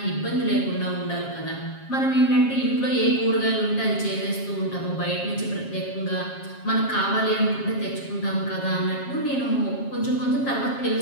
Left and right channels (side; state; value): right; late; 7.4 ms